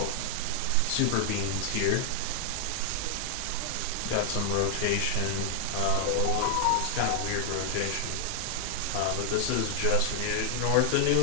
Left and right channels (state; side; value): different; both; correlation 0.00